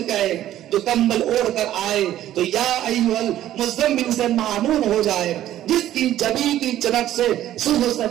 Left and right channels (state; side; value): quieter; left; 12.8 dB